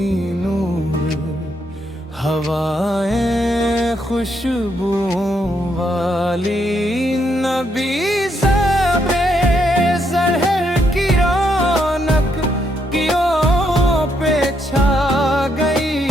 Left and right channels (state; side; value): normal; both; correlation 0.76